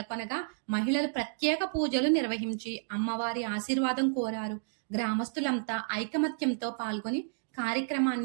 మహిళలు ప్రత్యేక పూజలు నిర్వహించి అమ్మవారి ఆశీర్వాదం కోరారు. గ్రామస్తులంతా ఐకమత్యంతో పాల్గొని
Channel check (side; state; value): left; silent; digital silence